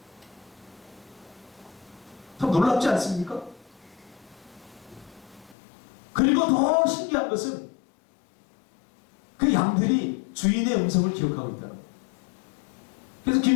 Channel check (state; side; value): drops out; right; at 5.6 s